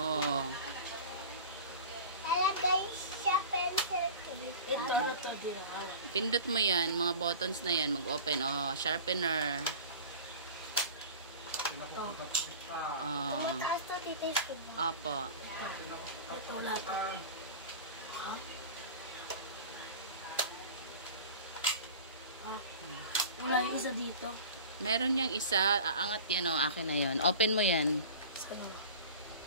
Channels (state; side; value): inverted; both; correlation -0.37